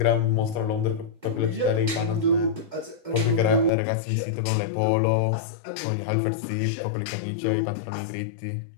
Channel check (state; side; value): drops out; right; at 3.7 s